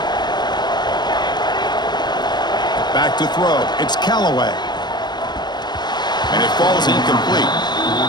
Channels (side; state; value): right; late; 0.21 ms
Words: Back to throw. It's Callaway. And it falls incomplete.